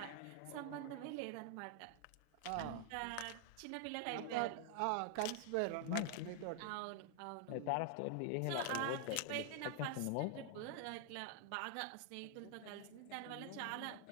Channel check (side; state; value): both; different; correlation 0.00